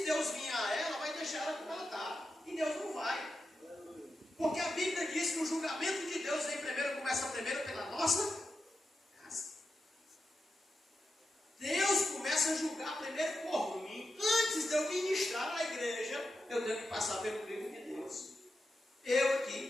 Deus vier a ela, vai deixar ela como ela está. E Deus não vai. Porque a Bíblia diz que o julgamento de Deus começa primeiro pela nossa casa. Deus começa a julgar primeiro por mim. Antes de eu ministrar na igreja, eu tenho que passar pelo crivo de Deus. Eu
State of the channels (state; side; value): normal; both; correlation 0.89